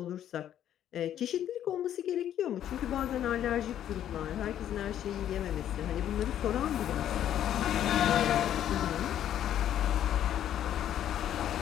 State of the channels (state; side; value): quieter; right; 10.8 dB